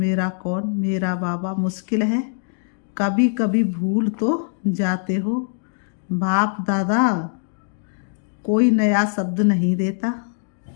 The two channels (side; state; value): right; silent; digital silence